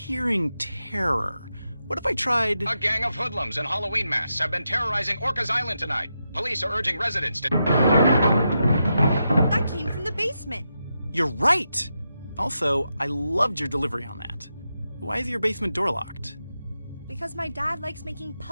terror. What if I tried... A gang of hoodlums in Halloween masks have been terrorizing Orcas Island tonight. Police are urging residents to... That came from the basement. You're right! Also, I loved your delivery on that. Why is your basement door locked? Because my dad likes making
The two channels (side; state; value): both; inverted; correlation -0.86